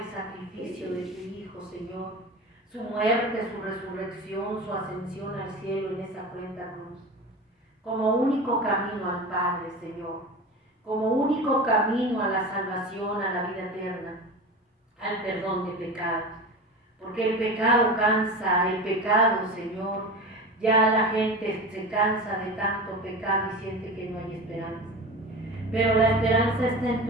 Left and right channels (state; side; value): normal; both; correlation 0.29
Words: sacrificio de tu Hijo, Señor. Su muerte, su resurrección, su ascensión al cielo en esa cruenta cruz. Como único camino al Padre, Señor. Como único camino a la salvación, a la vida eterna, al perdón de pecados. Porque el pecado cansa, el pecado, Señor, ya la gente se cansa de tanto pecado y siente que no hay esperanza. Pero la esperanza está en